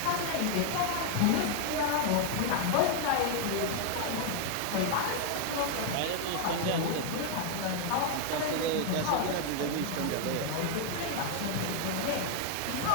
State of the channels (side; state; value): both; different; correlation 0.00